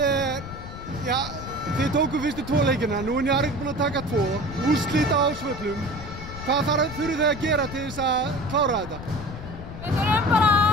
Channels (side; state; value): left; noise; rumble, 11 dB below the sound